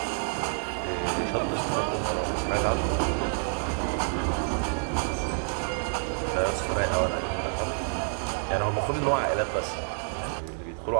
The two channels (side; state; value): left; silent; 59 dB below the other